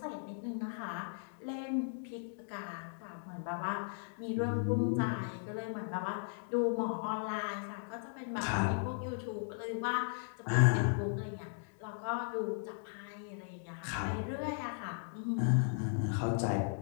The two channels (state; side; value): silent; right; digital silence